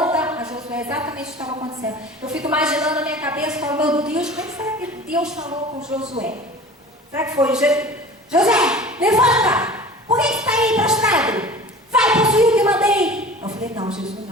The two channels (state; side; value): normal; both; correlation 0.40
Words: a Josué exatamente o que estava acontecendo. Eu fico imaginando na minha cabeça, falo, meu Deus, como será que Deus falou com Josué? Será que foi José, levanta! Por que você está aí prostrado? Vai possuir o que